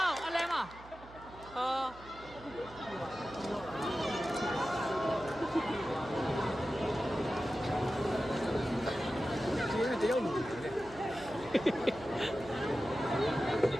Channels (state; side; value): noise; right; hum, 19 dB below the sound